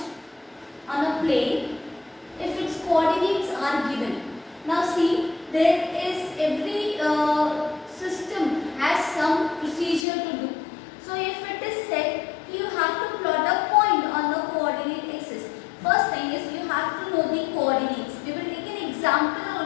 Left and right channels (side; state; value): right; drops out; at 10.0 s